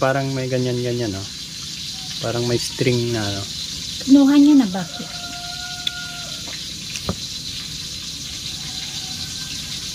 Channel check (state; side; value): identical; both; correlation 1.00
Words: parang may ganyan-ganyan, no? Parang may string na, no? Kinuha niya na bakit?